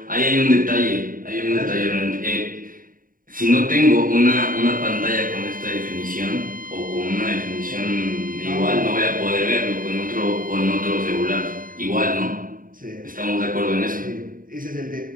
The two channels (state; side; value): late; left; 0.40 ms